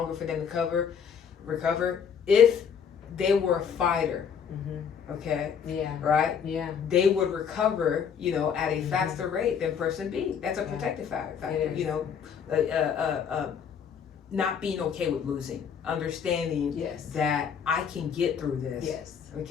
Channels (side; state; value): right; quieter; 7.2 dB